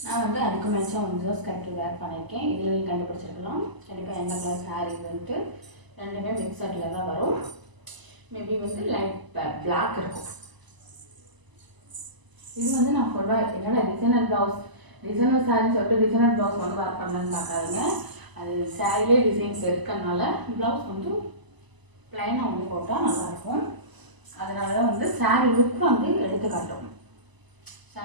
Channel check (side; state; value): left; late; 1.0 ms